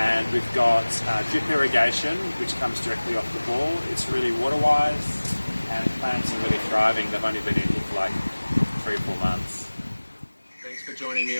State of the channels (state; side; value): inverted; both; correlation -1.00